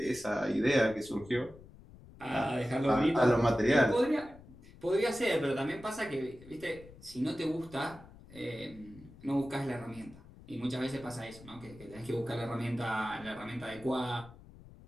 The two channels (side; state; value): left; noise; rumble, 20 dB below the sound